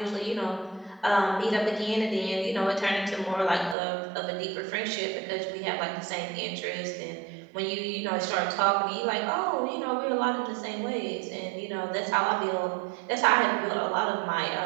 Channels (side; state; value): left; drops out; at 3.8 s